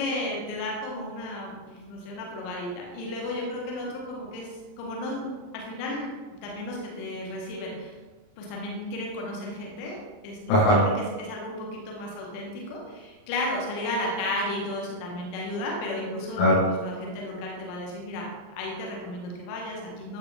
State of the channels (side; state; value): right; late; 39 ms